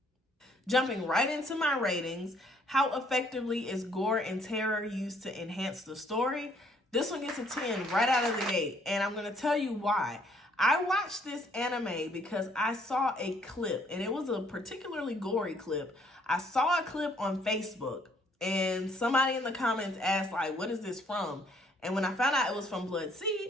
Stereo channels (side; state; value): both; normal; correlation 0.64